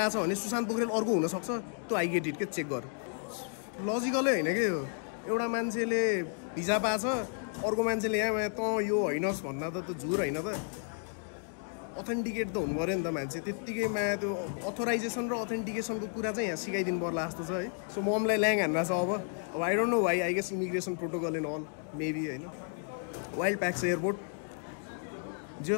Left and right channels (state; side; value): silent; right; 56 dB below the other